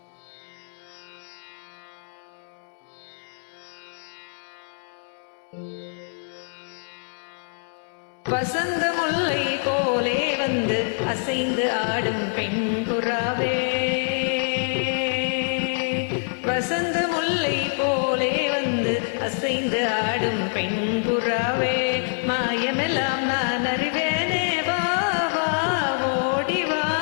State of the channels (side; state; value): right; silent; 62 dB below the other